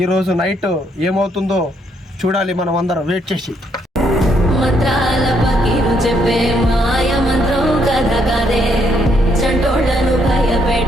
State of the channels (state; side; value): normal; both; correlation 0.73